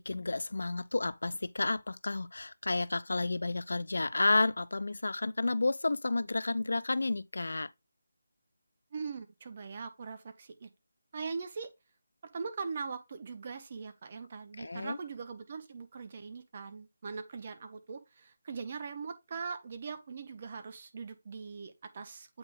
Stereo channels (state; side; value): inverted; both; correlation -0.95